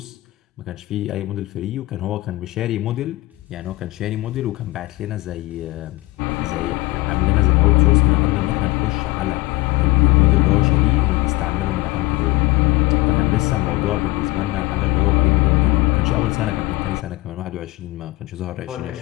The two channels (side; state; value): right; quieter; 20.3 dB